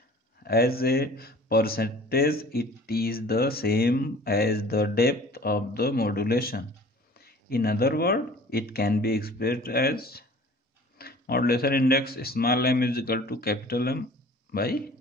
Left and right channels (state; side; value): normal; both; correlation 0.47